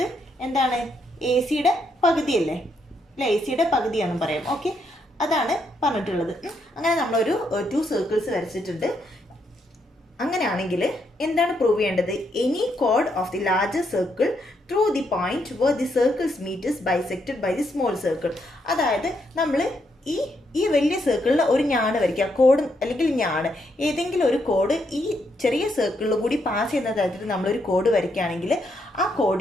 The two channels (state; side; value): normal; both; correlation 0.77